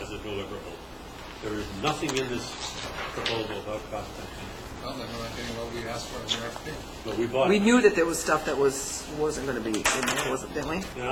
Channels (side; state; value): both; identical; correlation 1.00